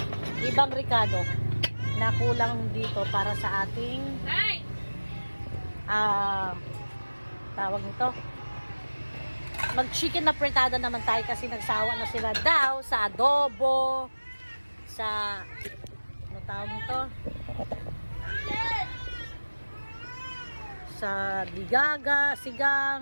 ibang ricado na kulang dito para sa ating tawag nito, mag-chicken na fritada naman tayo kasi nagsawa na sila daw sa adobo, sa ano tawag nito, sa digaga,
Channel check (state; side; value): inverted; both; correlation -1.00